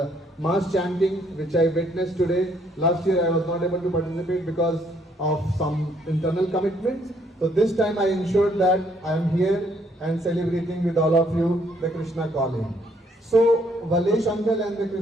mass chanting which I witnessed today. Last year I was not able to participate because of some internal commitments. So this time I ensured that I am here and celebrating with all of you the Krishna Calling. So Valesh uncle and the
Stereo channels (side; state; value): both; normal; correlation 0.68